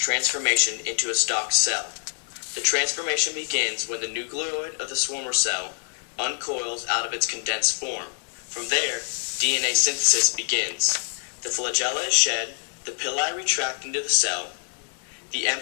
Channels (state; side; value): silent; right; digital silence